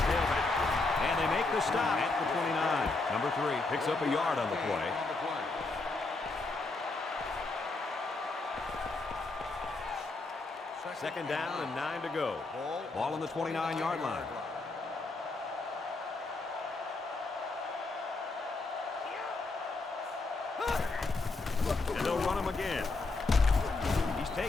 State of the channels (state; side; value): quieter; right; 3.5 dB